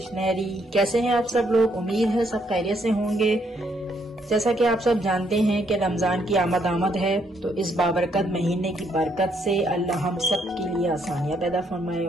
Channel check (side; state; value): both; normal; correlation 0.72